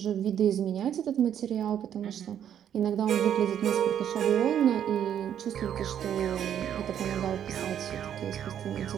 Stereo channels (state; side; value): quieter; left; 9.6 dB